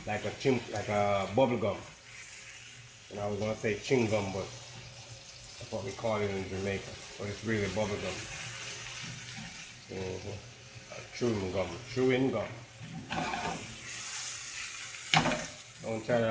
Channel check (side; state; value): both; identical; correlation 1.00